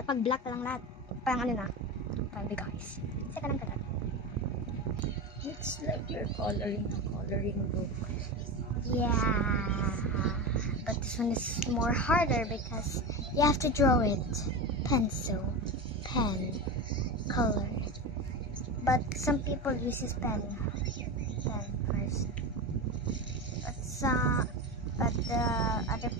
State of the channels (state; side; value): normal; both; correlation 0.22